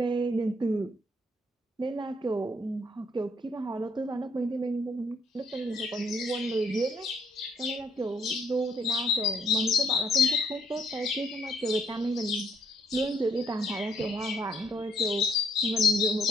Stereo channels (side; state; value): both; normal; correlation 0.69